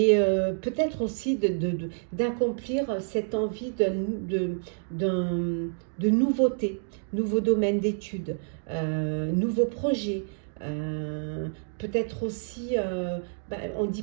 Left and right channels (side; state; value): left; silent; digital silence